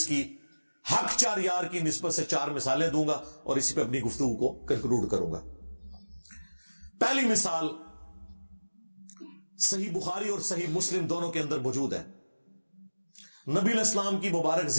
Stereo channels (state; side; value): inverted; both; correlation -1.00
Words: کی حق چار یار کی نسبت سے 4 مثالیں دوں گا اور اسی پہ اپنی گفتگو کو کنکلوڈ کروں گا. پہلی مثال صحیح بخاری اور صحیح مسلم دونوں کے اندر موجود ہے. نبی علیہ السلام کی مبارک